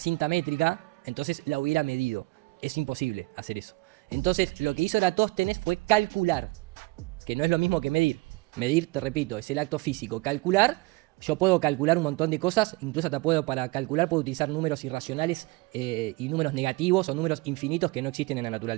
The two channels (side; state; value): left; quieter; 24.0 dB